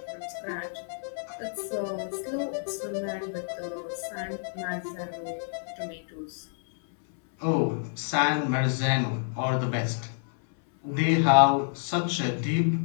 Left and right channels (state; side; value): silent; right; 59 dB below the other